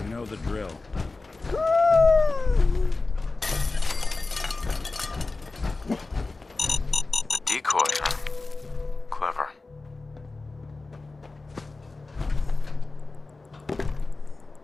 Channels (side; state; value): right; quieter; 3.5 dB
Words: You know the drill. A decoy, huh? Clever.